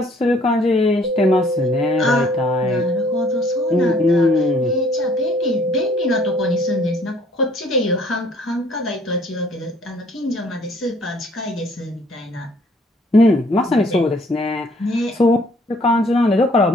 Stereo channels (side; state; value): both; normal; correlation 0.60